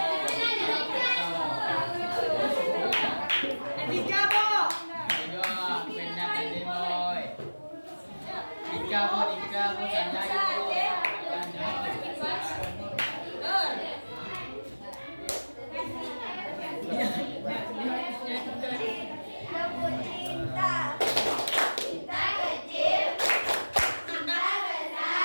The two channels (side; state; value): both; inverted; correlation -1.00